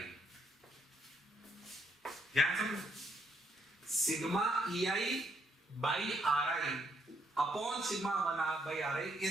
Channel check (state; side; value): normal; both; correlation 0.73